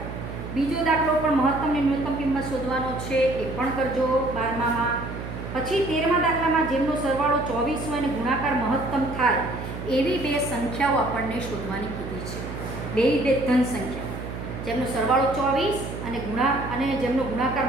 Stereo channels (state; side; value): noise; right; hum, 8 dB below the sound